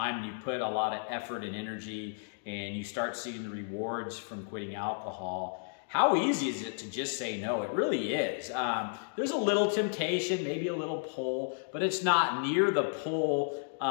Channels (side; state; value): right; silent; digital silence